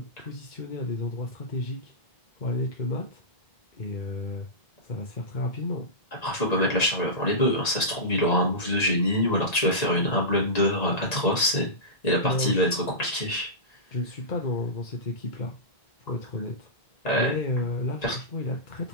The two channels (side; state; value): right; late; 1.9 ms